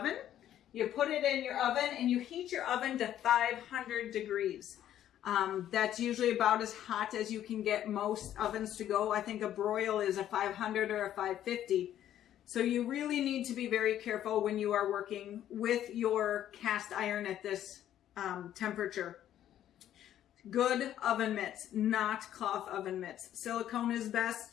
You put it in your oven and you heat your oven to 500 degrees. That's usually about as hot as you can get most ovens to go. I think a broil is a 500 or a 550. So you really need to be very careful when you are working with your cast iron at this temperature. Good oven mitts, not cloth oven mitts. Silicone is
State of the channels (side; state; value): right; quieter; 11.5 dB